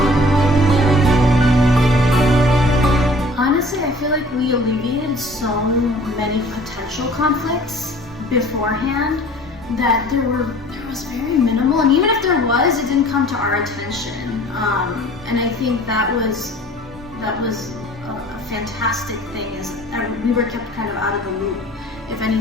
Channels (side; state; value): both; normal; correlation 0.50